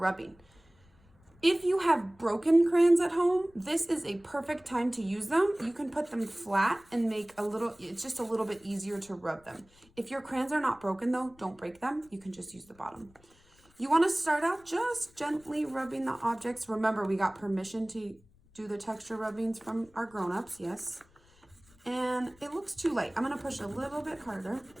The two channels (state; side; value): noise; left; rumble, 29 dB below the sound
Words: If you have broken crayons at home, this is a perfect time to use them. You can put them flat and make it's just a little bit easier to rub them. If your crayons are not broken though, don't break them. You can just use the bottom. You want to start out just gently rubbing the objects. Remember, we got permission to do the texture rubbings from our grown-ups, yes. And it looks too light. I'm going to push a little bit harder.